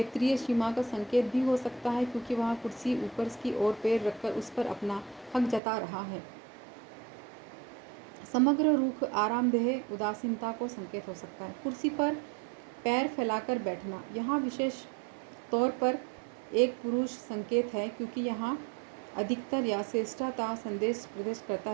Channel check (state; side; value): drops out; left; at 5.6 s